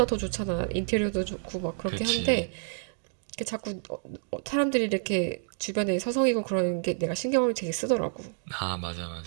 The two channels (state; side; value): silent; left; digital silence